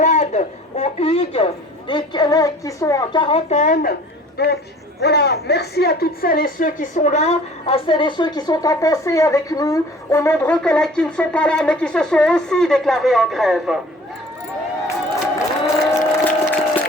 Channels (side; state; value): both; normal; correlation 0.48